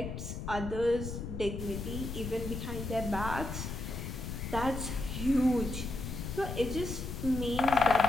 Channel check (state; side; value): noise; left; rumble, 6 dB below the sound